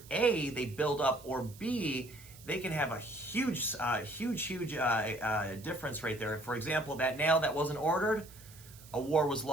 A, they build up, or B, they can have a huge difference right there. For example, that nail that wasn't ordered, a war was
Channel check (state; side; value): noise; right; hiss, 20 dB below the sound